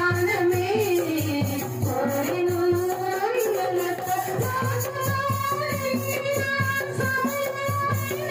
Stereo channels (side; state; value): both; identical; correlation 1.00